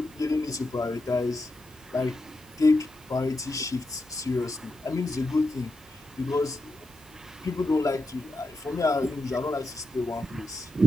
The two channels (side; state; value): both; normal; correlation 0.87